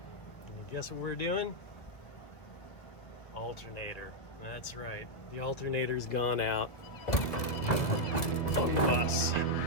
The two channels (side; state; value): right; late; 1.5 ms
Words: And guess what we're doing? Alternator. That's right. The alternator's gone out on the bus.